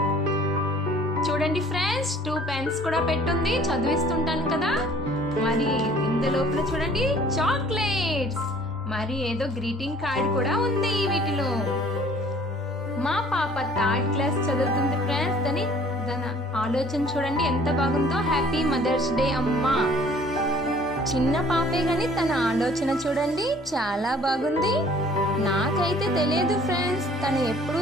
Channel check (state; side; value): normal; both; correlation 0.54